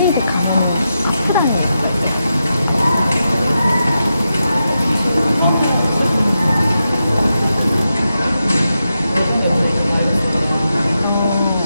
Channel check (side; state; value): both; inverted; correlation -0.88